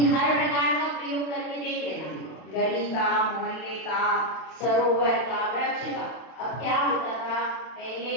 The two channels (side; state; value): right; late; 31 ms